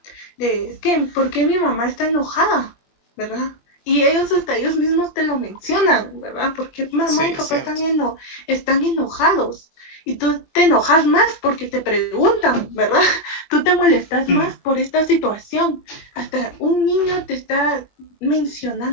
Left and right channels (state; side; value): late; right; 21 ms